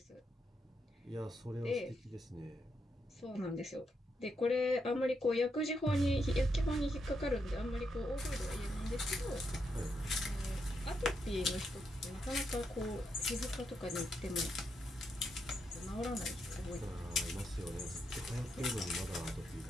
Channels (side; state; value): both; normal; correlation 0.81